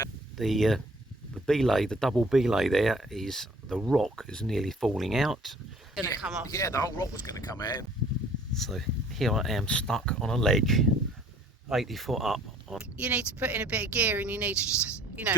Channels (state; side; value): normal; both; correlation 0.55